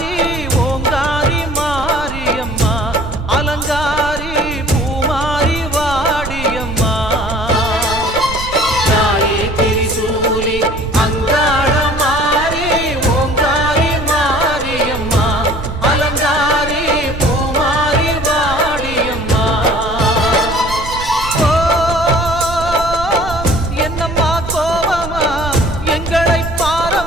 ஓங்காரி மாரியம்மா அலங்காரி பூமாரி வாடியம்மா தாயே திரிசூலி அங்காள மாறி ஓங்காரி மாரியம்மா அலங்காரி பூமாரி வாடியம்மா ஓ என்னம்மா கோவமா எங்களை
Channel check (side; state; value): right; noise; rumble, 9 dB below the sound